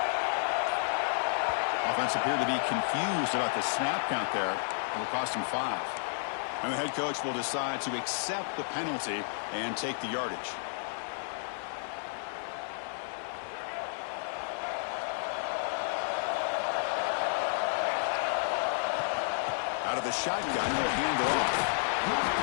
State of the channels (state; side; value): silent; right; 57 dB below the other